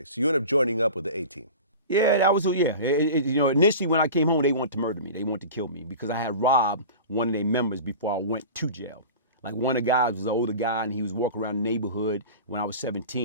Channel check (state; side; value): inverted; both; correlation -0.35